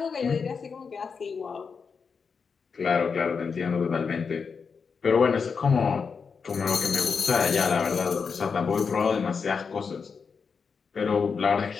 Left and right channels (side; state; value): right; quieter; 5.6 dB